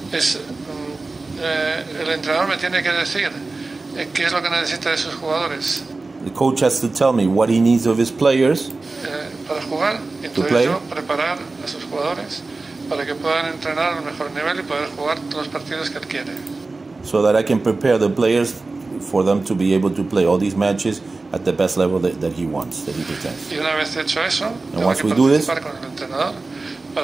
El entrenador me tiene que decir qué es lo que necesita de sus jugadores. The coach has to tell me what he needs of his players para jugar, y entonces yo preparar a sus jugadores para que puedan entrenar al mejor nivel y poder jugar todos los partidos que él quiere. So that I can prepare the players for them to be able to play all these matches at the best level that he wants, that he pretends. Y una vez hecho eso, and once we do this, con el entrenador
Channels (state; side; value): quieter; left; 3.5 dB